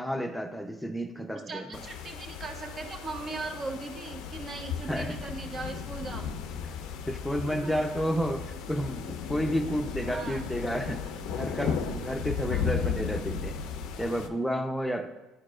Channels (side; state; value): both; normal; correlation 0.74